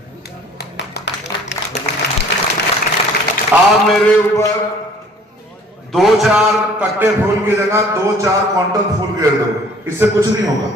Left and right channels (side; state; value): both; normal; correlation 0.54